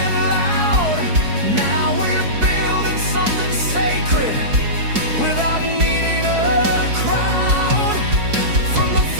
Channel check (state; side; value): late; left; 4.6 ms